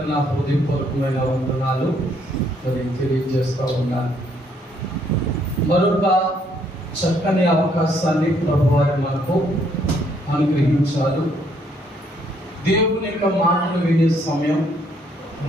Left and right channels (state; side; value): normal; both; correlation 0.68